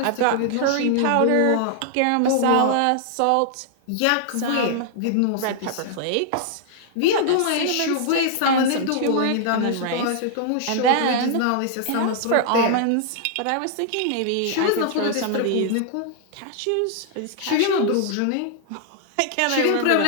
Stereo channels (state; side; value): different; both; correlation -0.01